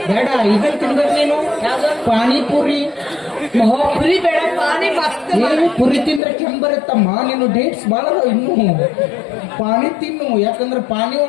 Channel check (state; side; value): drops out; right; at 6.2 s